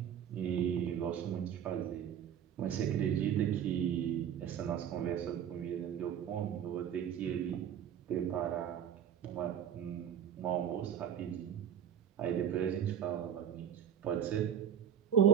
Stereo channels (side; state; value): left; quieter; 9.2 dB